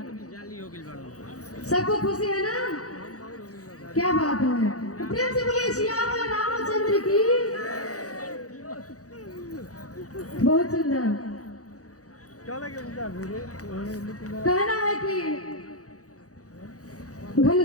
सबको खुशी है ना? क्या बात है, तो प्रेम से बोलिए श्याम रामचंद्र की। बहुत सुंदर। कहना है कि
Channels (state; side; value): late; right; 0.66 ms